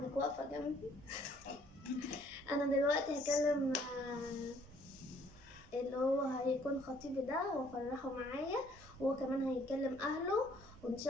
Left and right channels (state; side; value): normal; both; correlation 0.62